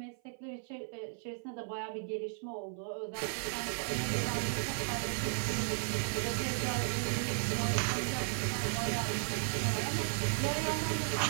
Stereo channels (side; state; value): left; silent; 54 dB below the other